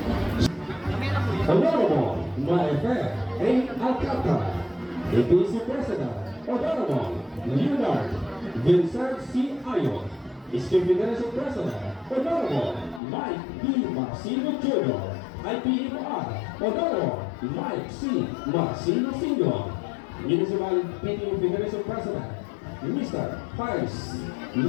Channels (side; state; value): right; drops out; at 13.0 s